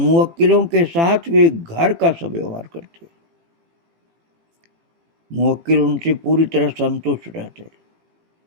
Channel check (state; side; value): late; left; 18 ms